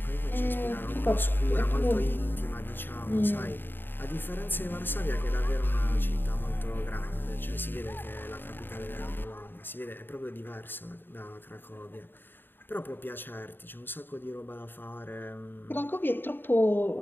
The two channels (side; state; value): right; late; 0.096 ms